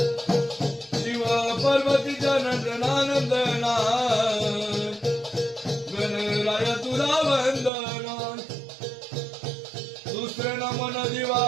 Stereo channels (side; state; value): left; drops out; at 7.7 s